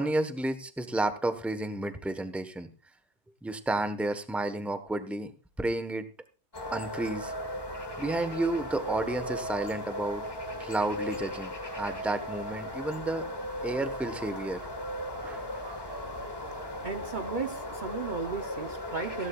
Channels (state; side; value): normal; both; correlation 0.54